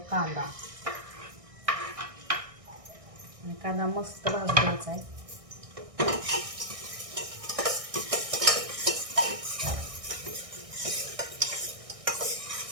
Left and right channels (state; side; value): late; left; 1.6 ms